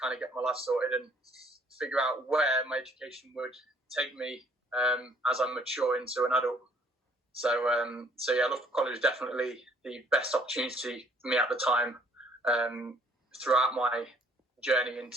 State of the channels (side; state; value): both; normal; correlation 0.61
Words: kind of get my life sorted and figure out where my education would take me as I mature into an adult. So yeah, Loughborough College was definitely the best opportunity for me at the time throughout my journey